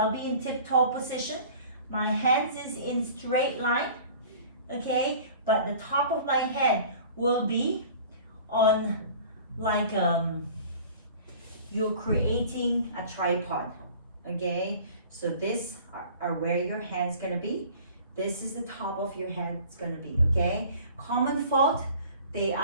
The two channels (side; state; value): both; inverted; correlation -0.45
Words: be in tip-toe position. My hands is in straight line, okay? But the top of my head will be on like you're creating a tripod, okay? So this are where your hand's gonna be. This is the top of your head it's gonna be, okay? Common fault, they